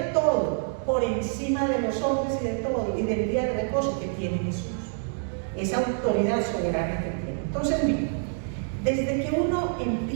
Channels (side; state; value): left; silent; digital silence